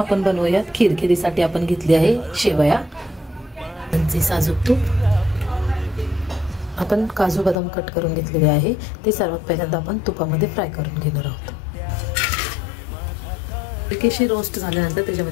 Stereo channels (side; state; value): right; drops out; at 7.6 s